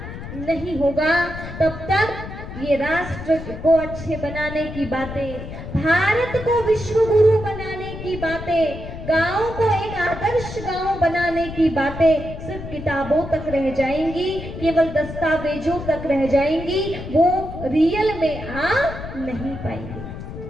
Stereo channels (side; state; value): left; noise; rumble, 10 dB below the sound